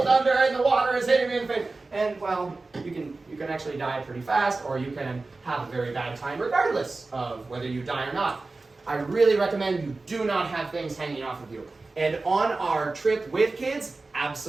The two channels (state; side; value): quieter; left; 3.5 dB